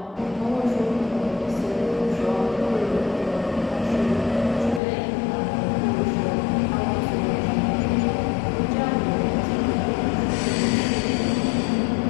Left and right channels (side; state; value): right; drops out; at 4.8 s